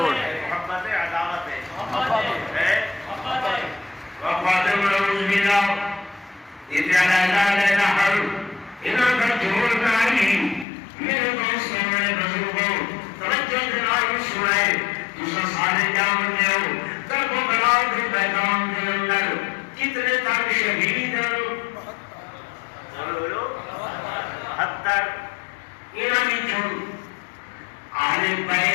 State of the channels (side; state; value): right; drops out; at 10.7 s